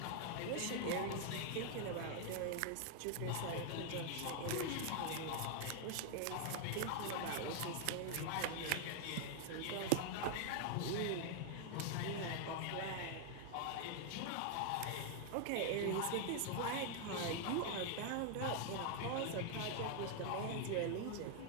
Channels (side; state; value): both; different; correlation 0.00